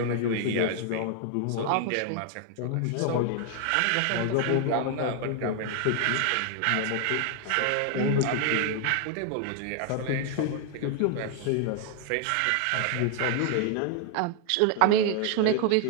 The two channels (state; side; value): different; both; correlation 0.00